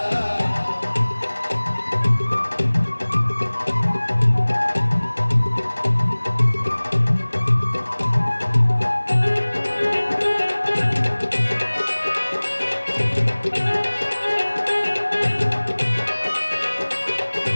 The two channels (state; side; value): inverted; both; correlation -1.00